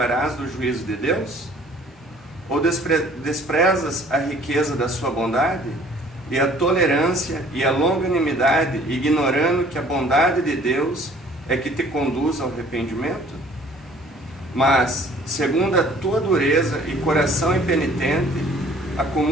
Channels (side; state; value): both; normal; correlation 0.54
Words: do juízo de Deus? Ou desprezas a riqueza da sua bondade e a tolerância e a longanimidade, ignorando que a bondade de Deus é que te conduz ao arrependimento? Mas, segundo a tua dureza e coração impenitente,